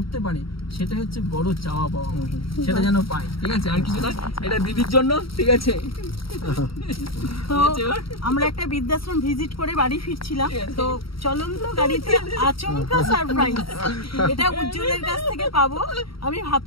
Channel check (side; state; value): right; late; 0.75 ms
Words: পারে, সেটা হচ্ছে বড় চাওয়া পাওয়া, সেটা যেন পায়, ঠিক আছে? আর কিছু না, এটা দিদির জন্য, ঠিক আছে? তো আমরা একটা বৃদ্ধাশ্রম ভিজিট করে বাড়ি ফিরছিলাম, তো চলন্ত গাড়িতে আচমকা সারপ্রাইজ, এটা উজ্জ্বলের কাছ থেকে পাবো আমি